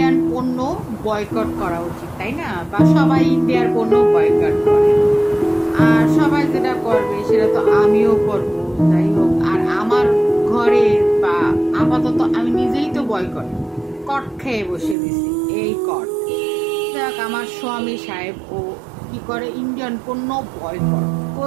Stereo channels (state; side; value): drops out; left; at 15.0 s